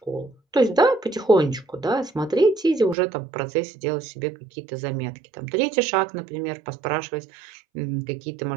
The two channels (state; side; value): drops out; left; at 3.0 s